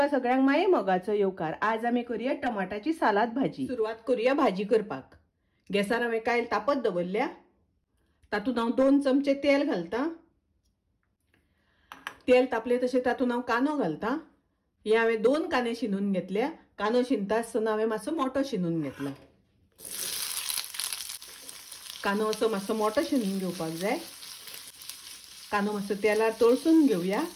सगळ्यांक माये मोगाचो येवकार। आज आमी करूया टमाटाची सालाद भाजी। सुरवात करूया भाजी करपाक। गॅसार हांवें कायल तापत दवरल्या। तातूंत हांव 2 चमचे तेल घालता। तेल तापले तशें तातूंत हांव कांदो घालता। हे हांवें 2 कांदे शिनून घेतल्या। कांदो शिनता आसतना हांवें मातसो मोठो शिनून घेतला। कांदो असो मातसो मोठो शिनून घेवपाक जाय। कांदो मातसो तेलार तळसून घेवया।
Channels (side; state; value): both; identical; correlation 1.00